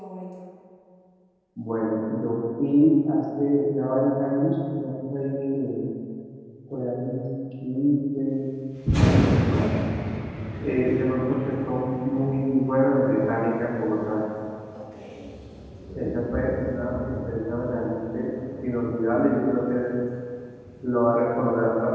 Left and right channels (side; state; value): both; identical; correlation 1.00